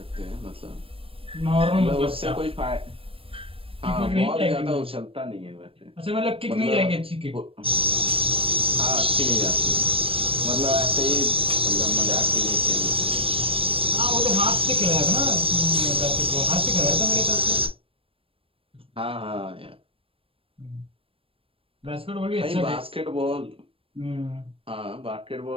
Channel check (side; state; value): left; late; 0.27 ms